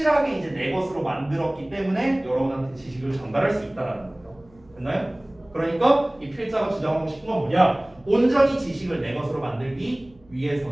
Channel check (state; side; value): noise; right; hum, 29 dB below the sound